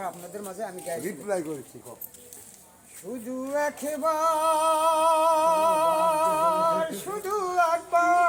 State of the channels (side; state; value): both; identical; correlation 1.00